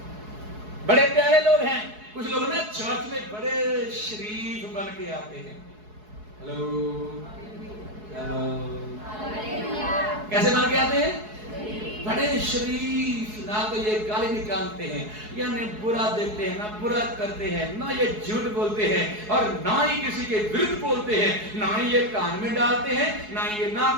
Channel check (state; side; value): late; left; 4.7 ms